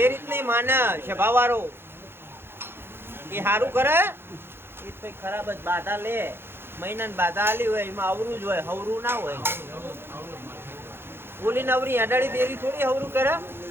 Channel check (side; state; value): left; late; 0.11 ms